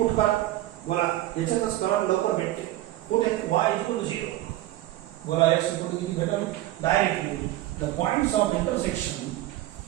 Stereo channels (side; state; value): left; quieter; 15.6 dB